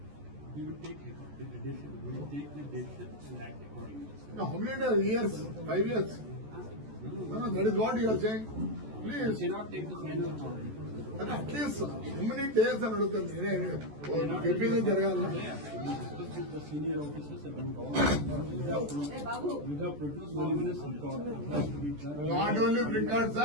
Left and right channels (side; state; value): left; late; 14 ms